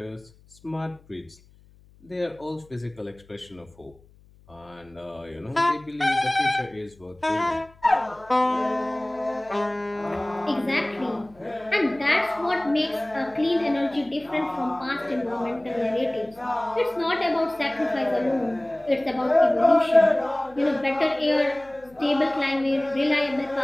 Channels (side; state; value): left; noise; hum, 28 dB below the sound